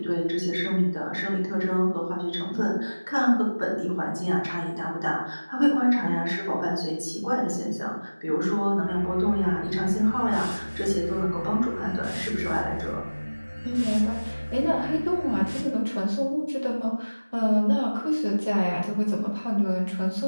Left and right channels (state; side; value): inverted; both; correlation -1.00